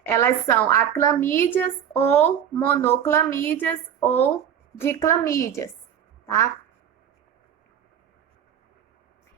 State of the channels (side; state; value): left; quieter; 9.0 dB